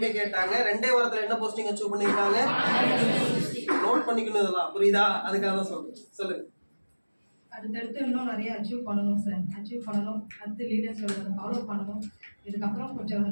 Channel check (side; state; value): both; inverted; correlation -1.00